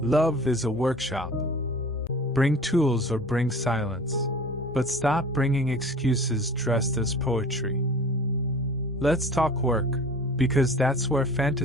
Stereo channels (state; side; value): normal; both; correlation 0.42